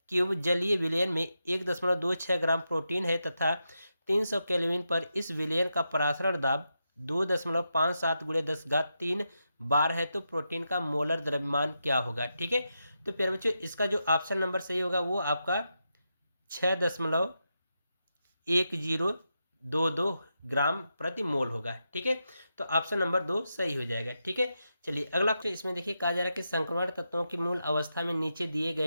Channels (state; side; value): inverted; both; correlation -0.86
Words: क्यूब जलीय विलयन में 1.26 ग्राम प्रोटीन है तथा 300 केल्विन पर इस विलयन का परासरण दाब 2.57 × 10³ बार है, तो प्रोटीन का मोलर द्रव्यमान क्या होगा। ठीक है, तो प्यारे बच्चों, इसका जो ऑप्शन नंबर सही होगा वो आपका 6.1022 ग्राम प्रति मोल होगा। ठीक है, तो ऑप्शन नंबर 2 सही हो जाएगा। ठीक है, चलिए अगला क्वेश्चन इसमें देखिए कहा जा रहा है कि संक्रमण तत्वों की मूल अवस्था में नीचे दिए